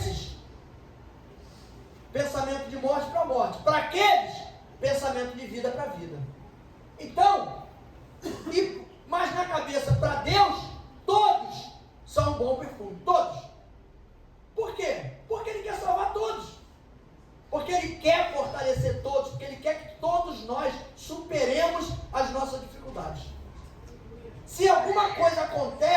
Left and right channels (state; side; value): identical; both; correlation 1.00